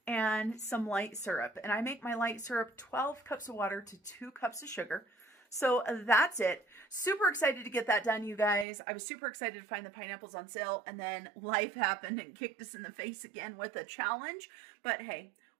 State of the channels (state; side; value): drops out; left; at 8.7 s